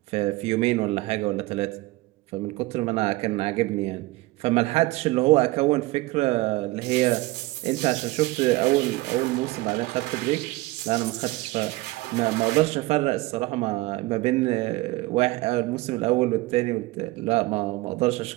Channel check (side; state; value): left; quieter; 20.2 dB